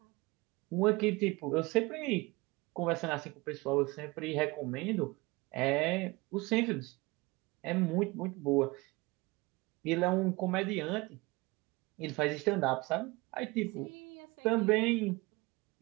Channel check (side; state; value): left; quieter; 23.7 dB